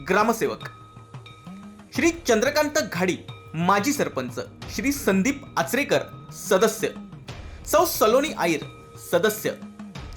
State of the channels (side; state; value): both; identical; correlation 1.00